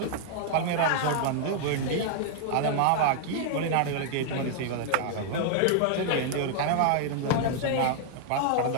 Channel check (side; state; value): both; different; correlation -0.01